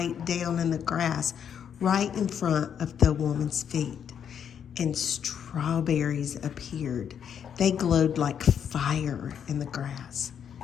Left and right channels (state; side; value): quieter; right; 8.2 dB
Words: down in the grass right in front of the woman's feet, and strawberries appeared. They glowed like fire in the grass,